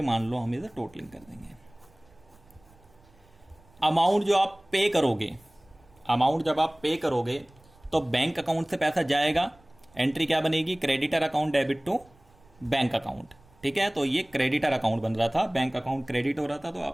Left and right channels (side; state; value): right; noise; rumble, 29 dB below the sound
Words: मान लो हम इसे टोटलिंग कर देंगे। अमाउंट जो आप पे करोगे अमाउंट जब आप पे करोगे तो बैंक अकाउंट से पैसा जाएगा, एंट्री क्या बनेगी, creditor account debit to bank account. ठीक है, तो ये क्रेडिटर अकाउंट बन रहा था, बैंक अकाउंट क्रेडिट हो रहा था, तो